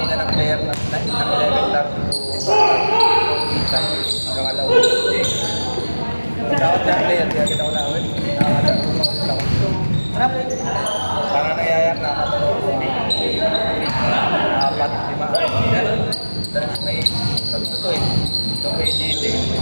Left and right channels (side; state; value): both; inverted; correlation -1.00